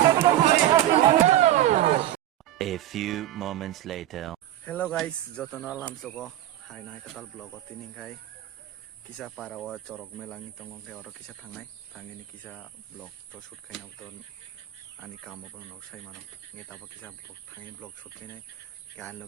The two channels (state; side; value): quieter; left; 13.3 dB